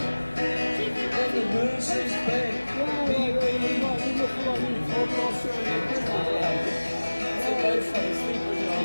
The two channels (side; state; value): both; inverted; correlation -1.00